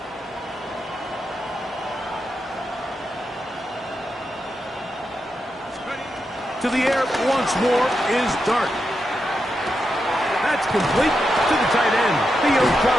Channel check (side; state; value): both; normal; correlation 0.86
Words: To the air once more is Dart. That's complete to the tight end, Theo